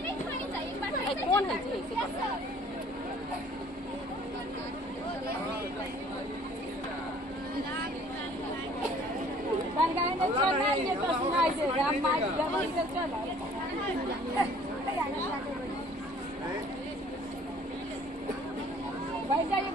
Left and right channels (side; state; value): both; normal; correlation 0.54